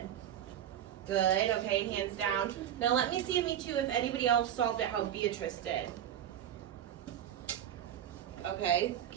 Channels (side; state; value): left; quieter; 10.5 dB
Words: Good, okay, hands down. Now let me see a me too if anybody else solved it how Beatrice did. Okay,